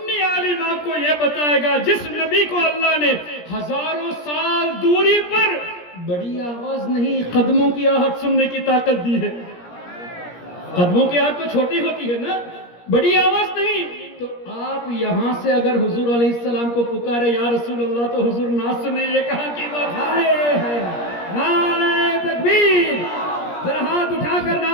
عالم آپ کو یہ بتائے گا جس نبی کو اللہ نے ہزاروں سال دوری پر بڑی آواز نہیں، قدموں کی آہٹ سننے کی طاقت دی ہے۔ قدموں کی آہٹ تو چھوٹی ہوتی ہے نا، بڑی آواز نہیں۔ تو آپ یہاں سے اگر حضور علیہ السلام کو پکارے یا رسول اللہ تو حضور نہ سنے، یہ کہاں کی بات ہے؟ نعرہ تکبیر! ذرا ہاتھ اٹھا کر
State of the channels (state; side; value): late; right; 17 ms